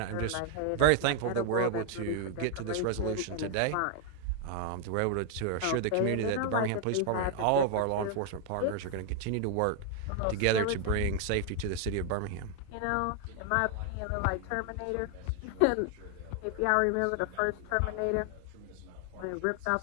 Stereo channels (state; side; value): different; both; correlation 0.00